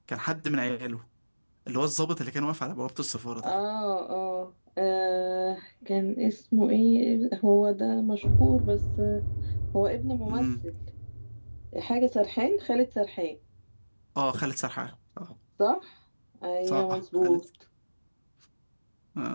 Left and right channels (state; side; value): inverted; both; correlation -1.00